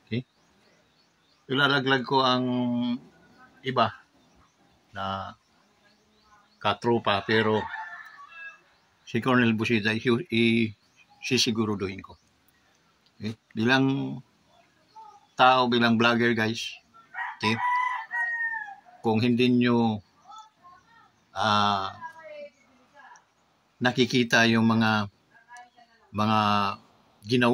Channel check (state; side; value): identical; both; correlation 1.00